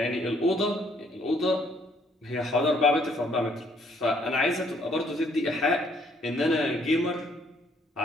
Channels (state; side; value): normal; both; correlation 0.66